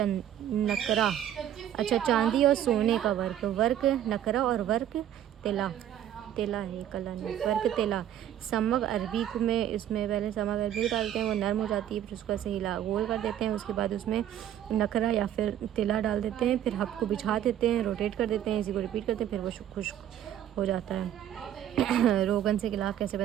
नकरा। अच्छा, चांदी और सोने का वर्क नकरा और वर्क तेला है, कला नहीं, वर्क तेला। समग अरबी को में इसमें पहले समग अरबी डालते हैं, वो नरम हो जाती है, फिर उसको ऐसे हिला गोल कर देते हैं। उसके बाद उसमें नकरा या फिर तेला डाल देते हैं, फिर हब को बिछा देते हैं, रोटेट कर देते हैं, इसी को रिपीट करते हैं, फिर वो खुश्क हो जाता है। रोगन से गिलाफ कैसे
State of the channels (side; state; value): left; quieter; 11.1 dB